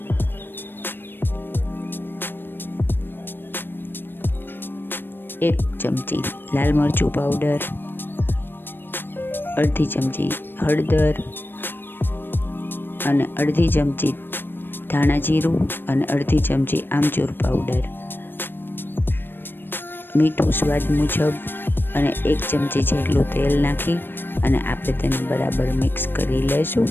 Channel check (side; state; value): right; late; 0.097 ms